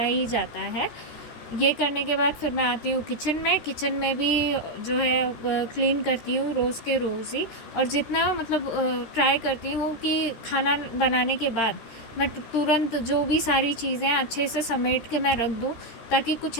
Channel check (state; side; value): late; right; 13 ms